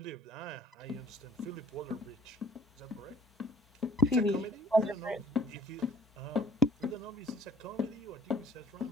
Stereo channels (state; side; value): normal; both; correlation 0.55